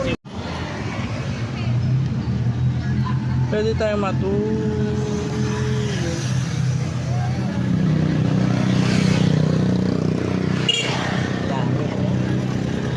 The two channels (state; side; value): identical; both; correlation 1.00